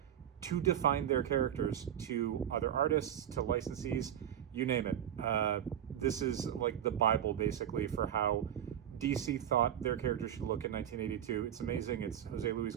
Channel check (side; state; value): left; quieter; 10.1 dB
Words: to define their characters to other artists, to licensees, you name it. This is like the Bible, basically, for how DC thought their character should look in 1982. It's amazing. It's Jose Luis